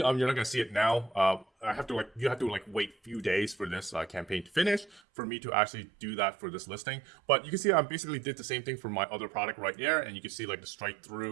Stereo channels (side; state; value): left; drops out; at 5.0 s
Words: not gonna see it now. You have to wait a few days for this campaign to finish for me to actually do that for this listing. But you can see I basically did the same thing for my other product right there, and you can see like the strike